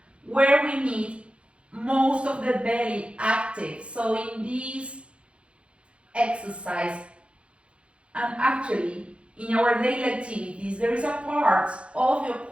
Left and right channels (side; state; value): left; late; 0.059 ms